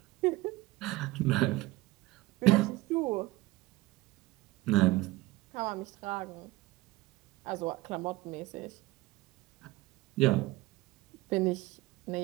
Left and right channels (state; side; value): quieter; left; 18.9 dB